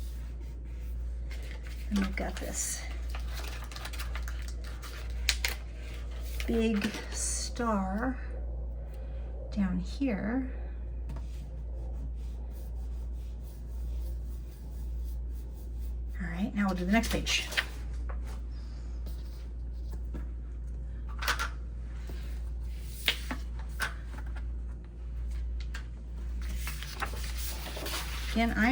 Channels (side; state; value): both; identical; correlation 1.00